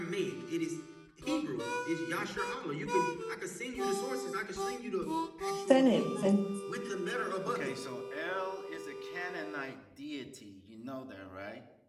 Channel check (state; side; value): identical; both; correlation 1.00